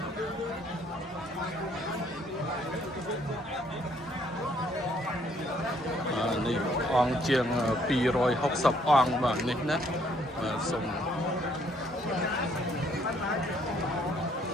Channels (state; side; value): normal; both; correlation 0.66